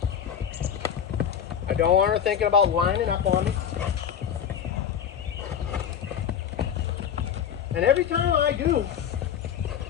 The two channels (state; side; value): quieter; right; 8.5 dB